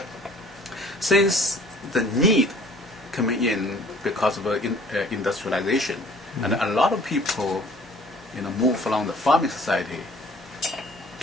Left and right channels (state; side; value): normal; both; correlation 0.53